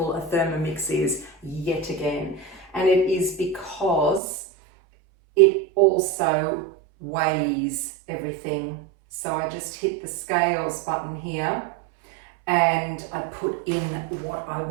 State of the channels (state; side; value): drops out; left; at 4.2 s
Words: a Thermomix is yet again. And it is because it also weighs everything. So I just hit the scales button here and I put in what I